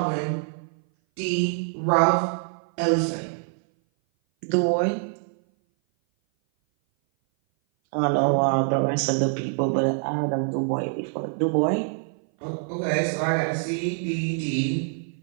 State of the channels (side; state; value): left; silent; 57 dB below the other